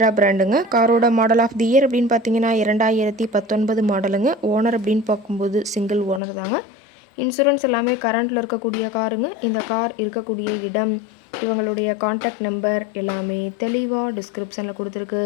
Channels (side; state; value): right; drops out; at 6.2 s